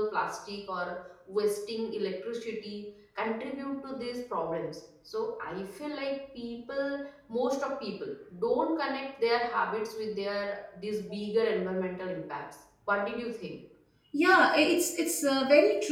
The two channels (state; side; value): identical; both; correlation 1.00